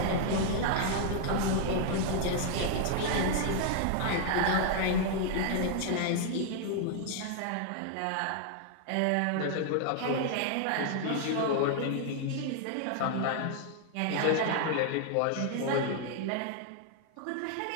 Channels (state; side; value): different; both; correlation 0.00